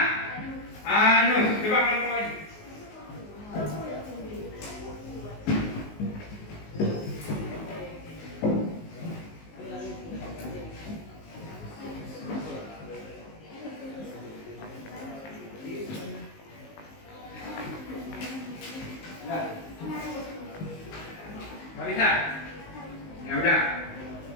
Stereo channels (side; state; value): right; late; 19 ms